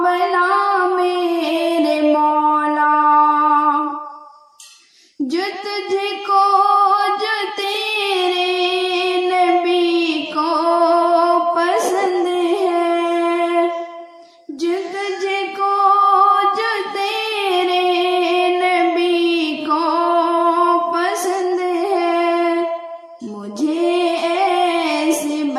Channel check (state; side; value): identical; both; correlation 1.00